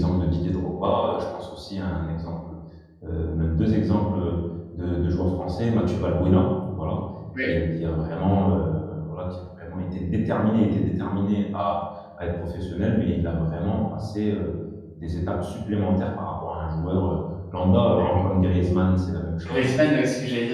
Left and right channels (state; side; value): identical; both; correlation 1.00